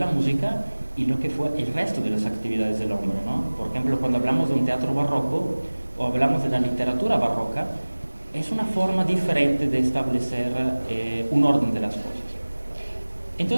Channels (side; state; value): both; inverted; correlation -1.00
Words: música y lo que fue el resto de las actividades del hombre, ¿no? Por ejemplo, cuando hablamos de un teatro barroco o hablamos de la literatura barroca, es una forma diferente de establecer un orden de las cosas.